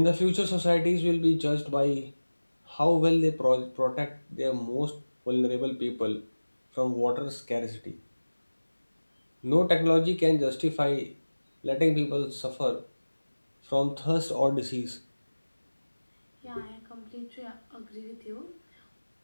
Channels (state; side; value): inverted; both; correlation -1.00